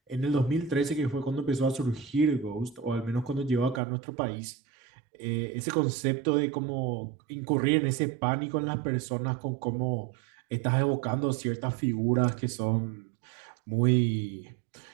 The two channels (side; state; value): left; drops out; at 3.8 s